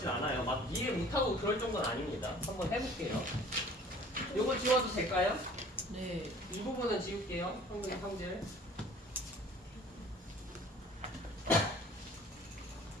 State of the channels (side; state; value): both; normal; correlation 0.49